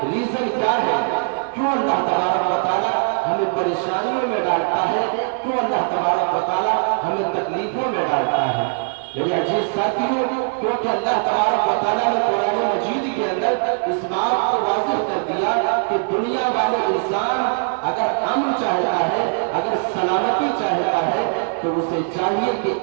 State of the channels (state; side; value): silent; left; 65 dB below the other